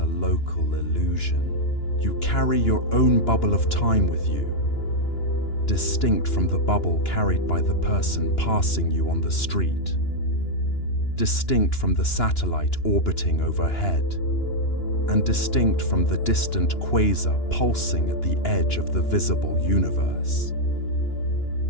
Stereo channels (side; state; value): right; late; 2.9 ms